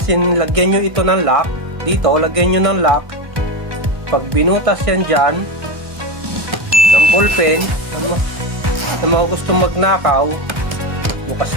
lagyan nyo ito ng lock, dito, lagyan nyo ng lock. Pag binutas yan dyan, ng ballpen, sa mga gusto magnakaw, bukas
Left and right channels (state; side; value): late; left; 1.6 ms